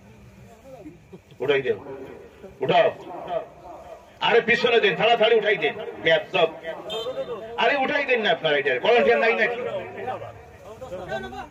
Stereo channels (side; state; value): both; identical; correlation 1.00